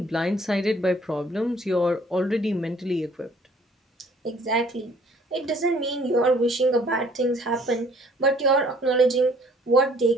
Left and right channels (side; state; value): both; normal; correlation 0.58